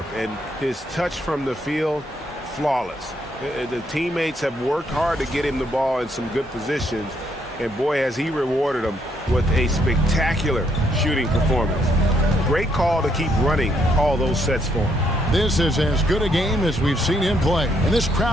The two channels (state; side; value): normal; both; correlation 0.73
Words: and his touch from the field, flawless. The teammates have worked hard to get him the ball in some good positions, and boy, has he rewarded them with a spectacular shooting performance. Great call to keep running all those sets for him. This is as good a game as we've seen him play. And this